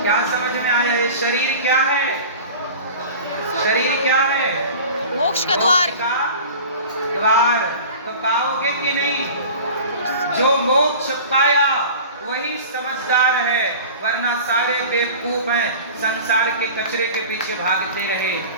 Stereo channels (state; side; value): inverted; both; correlation -0.38